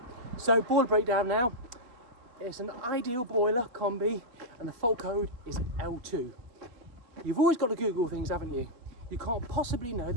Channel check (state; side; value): late; left; 3.1 ms